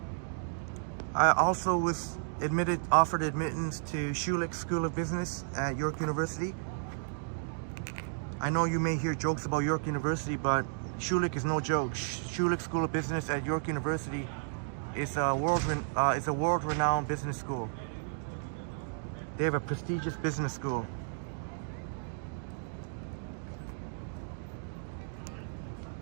I also was offered admittance to Schulich School of Business at York University. I know you may hear jokes about York University, but Schulich is no joke. Schulich School of Business at York University is a world-renowned business school. They have a prestigious business school.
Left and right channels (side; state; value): left; silent; digital silence